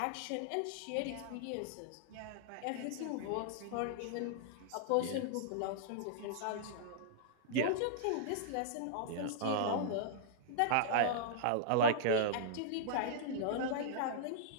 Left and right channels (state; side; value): different; both; correlation -0.02